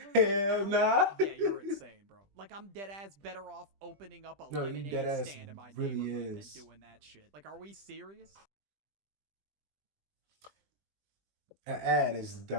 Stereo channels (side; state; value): left; late; 20 ms